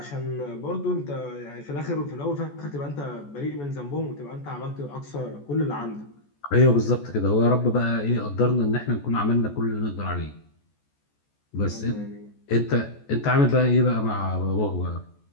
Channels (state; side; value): late; right; 14 ms